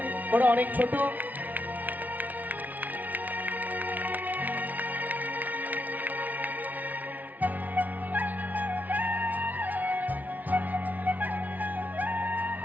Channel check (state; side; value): late; left; 0.077 ms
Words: ওরা অনেক ছোট।